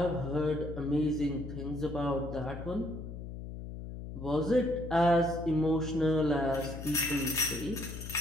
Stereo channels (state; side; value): noise; left; hum, 9 dB below the sound